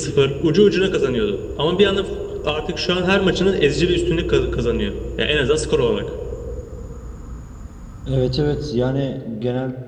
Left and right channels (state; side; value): identical; both; correlation 1.00